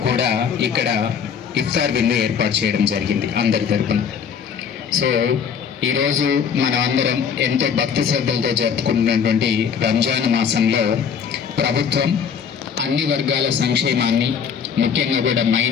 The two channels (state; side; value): quieter; right; 7.1 dB